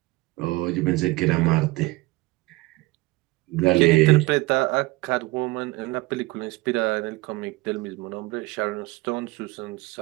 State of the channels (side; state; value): left; quieter; 21.5 dB